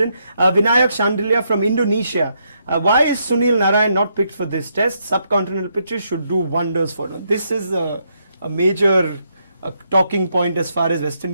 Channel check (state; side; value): inverted; both; correlation -0.77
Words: Vinayak Shandilia from Indonesia. Why is Sunil Narayan not picked for this test? Subcontinental pitches should do wonders for them. This is a major talking point as far as West